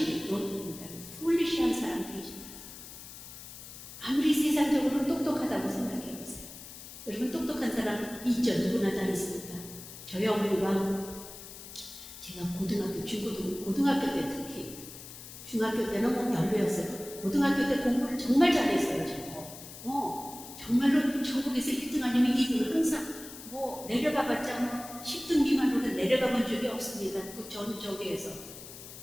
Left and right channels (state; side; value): noise; left; hiss, 14 dB below the sound